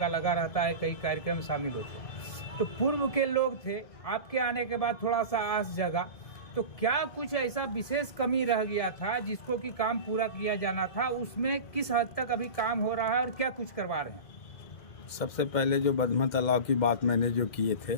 लगा रहता है, कई कार्यक्रम शामिल होते हैं। तो पूर्व के लोग थे, आपके आने के बाद थोड़ा सा आस जगा, तो क्या कुछ ऐसा विशेष कमी रह गया था जिसको कि काम पूरा किया जाना था, उसमें किस हद तक अभी काम हो रहा है और क्या कुछ करवा रहे हैं? सबसे पहले जो बदमा तालाब की बात मैंने जो किए थे,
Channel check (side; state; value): right; late; 1.7 ms